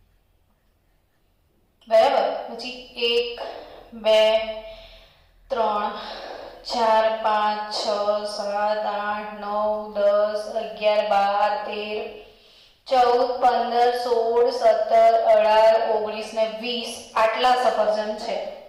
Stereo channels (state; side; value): identical; both; correlation 1.00